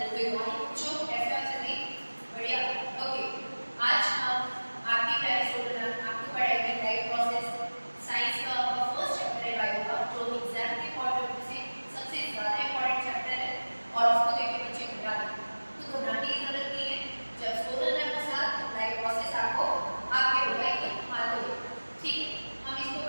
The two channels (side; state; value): both; inverted; correlation -1.00